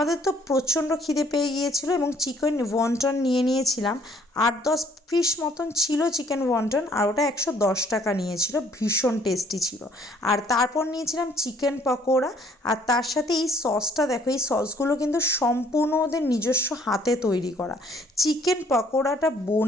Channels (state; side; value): normal; both; correlation 0.61